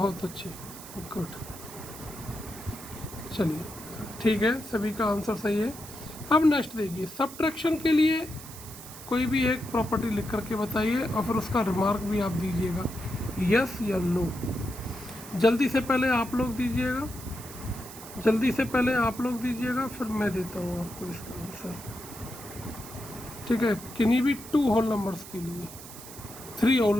अच्छे, गुड। चलिए ठीक है, सभी का आंसर सही है। अब नेक्स्ट देखिए, सब्ट्रैक्शन के लिए कोई भी एक प्रॉपर्टी लिख करके बताइए और फिर उसका रिमार्क भी आप दीजिएगा, यस या नो। जल्दी से पहले आप लोग दीजिएगा, जल्दी से पहले आप लोग दीजिएगा, फिर मैं देता हूँ आपको इसका आंसर, ठीक है। किन्हीं भी 2 होल नंबर्स के लिए, 3 होल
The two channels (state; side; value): noise; right; hiss, 15 dB below the sound